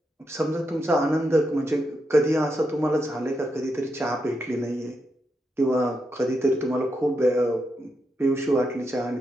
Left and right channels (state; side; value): normal; both; correlation 0.84